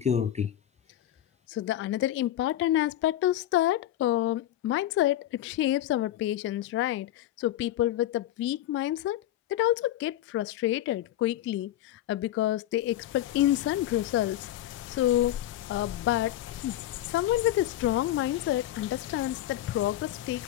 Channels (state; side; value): quieter; right; 13.1 dB